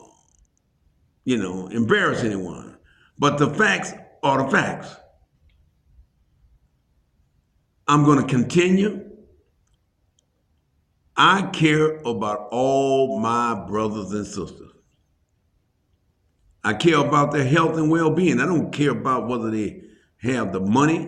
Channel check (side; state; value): both; identical; correlation 1.00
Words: embarrass anyone. But the facts are the facts. I'm going to continue. I care about all my brothers and sisters. I care about their health and well-being. I don't care about whether they have the